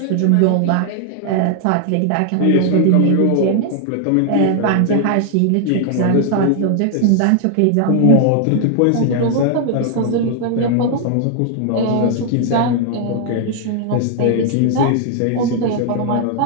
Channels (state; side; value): different; both; correlation 0.00